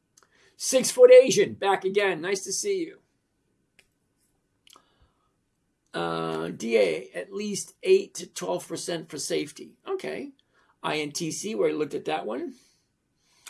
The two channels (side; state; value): both; identical; correlation 1.00